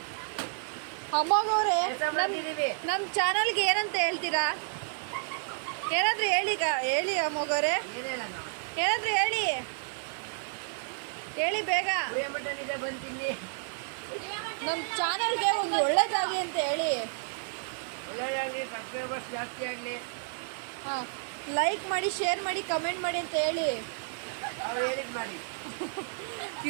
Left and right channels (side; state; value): left; silent; digital silence